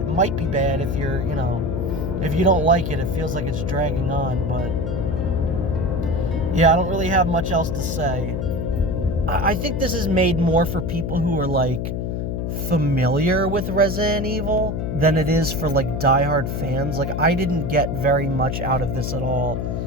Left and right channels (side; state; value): left; noise; hum, 2 dB below the sound